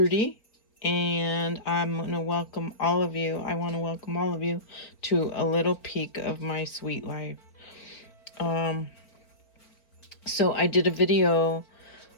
and I'm going to welcome all of you. I want to welcome all of you to a little peek of my sweet life. So I did a video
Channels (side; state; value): right; late; 4.6 ms